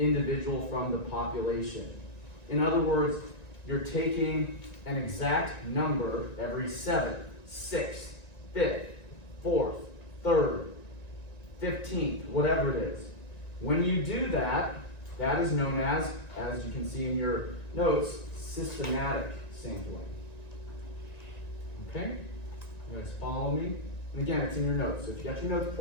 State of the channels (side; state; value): right; late; 1.9 ms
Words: from the population. In other words, you're taking an exact number every 7th, 6th, 5th, 4th, 3rd, 15th, whatever it is. When you do that, that is known as you can see in your notes, systematic sampling. Okay? You guys follow me? And again, it's in your notes. So if you got your notes